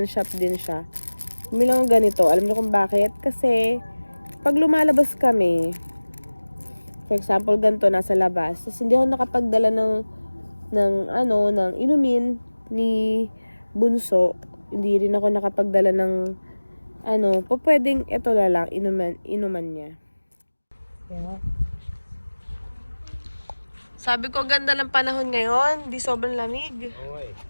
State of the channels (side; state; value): both; inverted; correlation -1.00